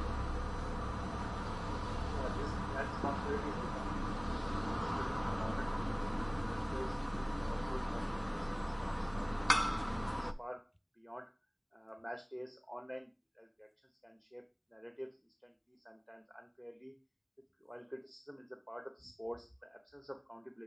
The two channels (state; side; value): identical; both; correlation 1.00